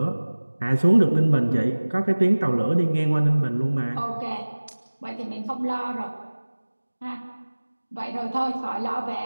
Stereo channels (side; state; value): both; inverted; correlation -1.00